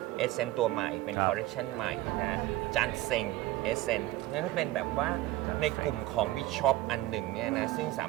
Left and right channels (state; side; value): quieter; left; 16.3 dB